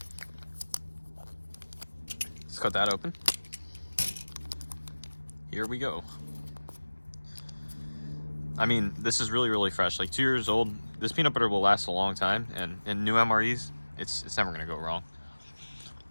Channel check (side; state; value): both; inverted; correlation -1.00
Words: Let's cut that open. Here we go. I mean, this is really, really fresh. Like 2 years old. This peanut butter will last a long time, and in new MREs, it's never gonna go wrong.